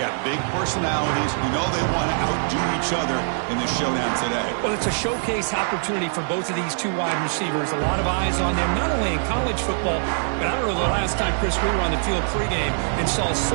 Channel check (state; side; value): silent; left; digital silence